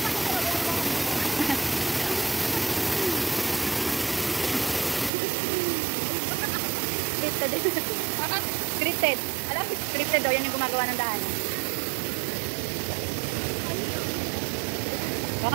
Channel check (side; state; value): left; drops out; at 5.1 s